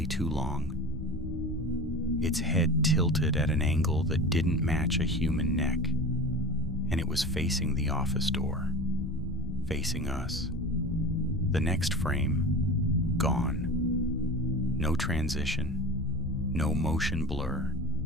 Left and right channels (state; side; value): normal; both; correlation 0.33